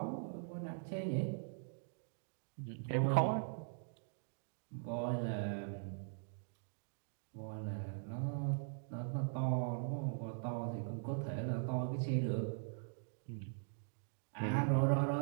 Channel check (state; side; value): silent; left; digital silence